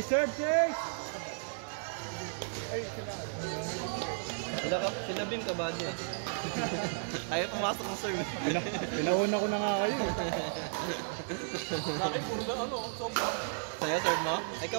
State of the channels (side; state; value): left; silent; digital silence